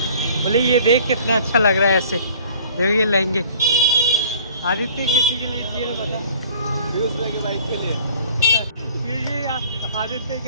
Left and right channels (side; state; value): both; inverted; correlation -0.51